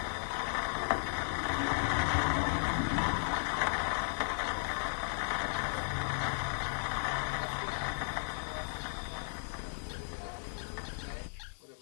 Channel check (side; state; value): right; silent; 54 dB below the other